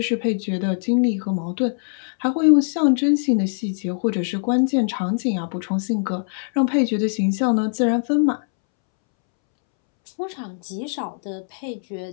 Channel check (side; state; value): right; silent; 64 dB below the other